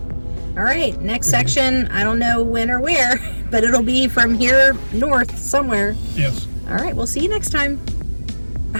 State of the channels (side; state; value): both; inverted; correlation -1.00